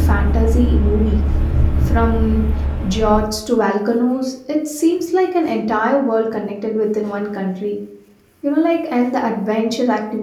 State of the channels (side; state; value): both; identical; correlation 1.00